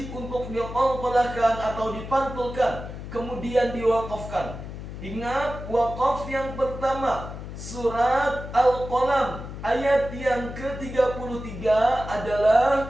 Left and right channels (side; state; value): left; noise; hum, 10 dB below the sound